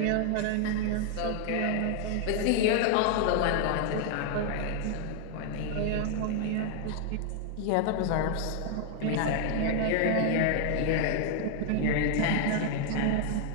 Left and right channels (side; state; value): both; different; correlation 0.00